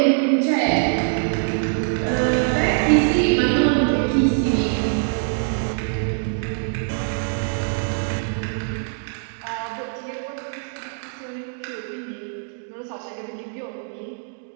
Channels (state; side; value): silent; left; digital silence